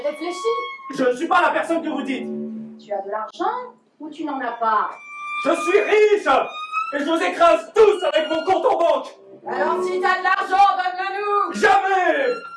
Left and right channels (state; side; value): identical; both; correlation 1.00